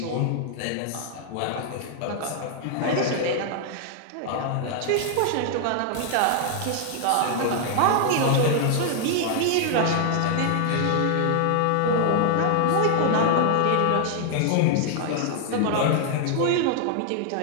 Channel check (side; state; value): both; different; correlation 0.00